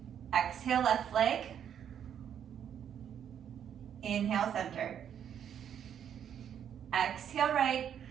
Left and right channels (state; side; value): quieter; left; 9.0 dB